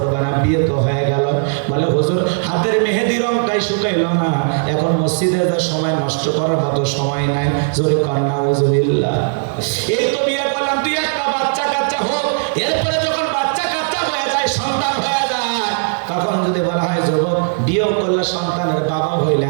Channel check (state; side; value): silent; left; 67 dB below the other